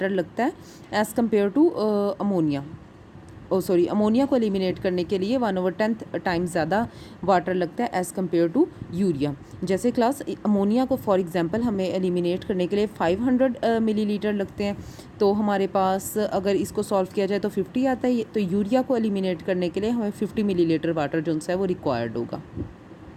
लगता है as compare to ammonia. Ammonia को एलिमिनेट करने के लिए 1/10 टाइम ज़्यादा वाटर लगता है एज़ कम्पेयर टू यूरिया। जैसे क्लास अमोनिया को फॉर एग्जांपल हमें एलिमिनेट करने के लिए 500 मिलीलीटर लगते हैं, तो हमारे पास अगर इसको सॉल्व किया जाए तो 50 आता है। तो यूरिया को एलिमिनेट करने के लिए हमें 50 मिलीलीटर वाटर जो है वो रिक्वायर्ड होगा।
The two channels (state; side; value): identical; both; correlation 1.00